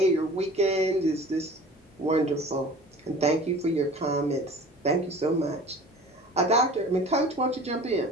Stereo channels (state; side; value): normal; both; correlation 0.42